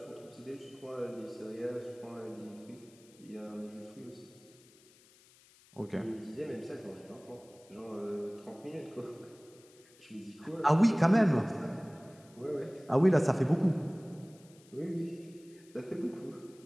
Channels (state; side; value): noise; left; hiss, 26 dB below the sound